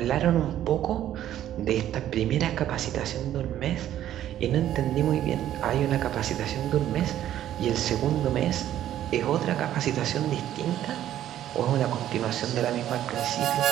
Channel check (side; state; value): left; quieter; 11.9 dB